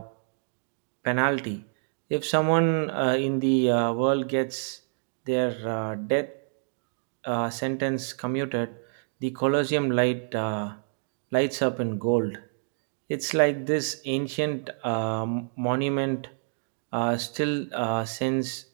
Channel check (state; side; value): silent; left; digital silence